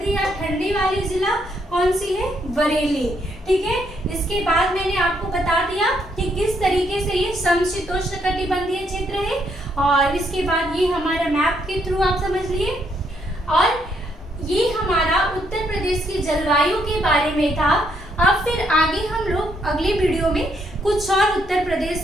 या ठंडी वाली जिला कौन सी है? बरेली, ठीक है। इसके बाद मैंने आपको बता दिया कि किस तरीके से ये समशीतोष्ण कटिबंधीय क्षेत्र है, और इसके बाद ये हमारा मैप के थ्रू आप समझ लिए। और ये हमारा उत्तर प्रदेश की जलवायु के बारे में था। अब फिर आगे हम लोग अगले वीडियो में कुछ और उत्तर प्रदेश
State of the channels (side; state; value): both; normal; correlation 0.74